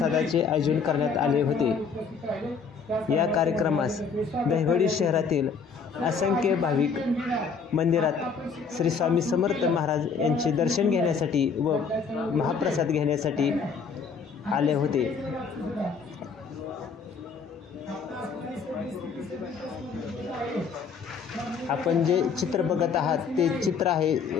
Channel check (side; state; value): right; quieter; 5.6 dB